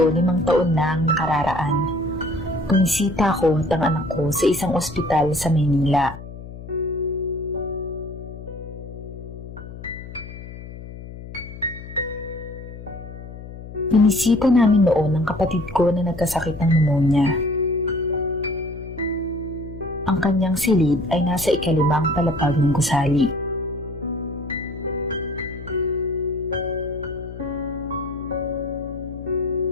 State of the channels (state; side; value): noise; left; hum, 13 dB below the sound